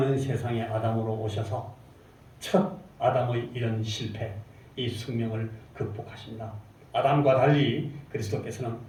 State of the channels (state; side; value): identical; both; correlation 1.00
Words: 세상의 아담으로 오셔서 첫 아담의 이런 실패, 이 숙명을 극복하십니다. 아담과 달리 그리스도께서는